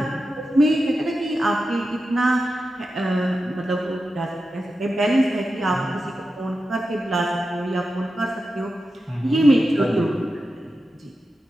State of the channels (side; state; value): both; normal; correlation 0.91